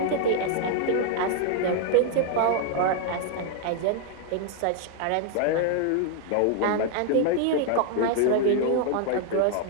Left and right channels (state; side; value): different; both; correlation 0.00